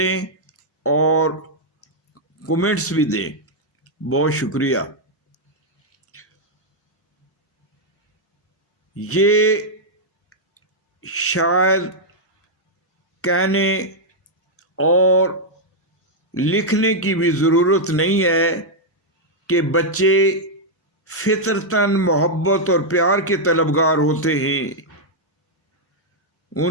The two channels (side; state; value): both; normal; correlation -0.04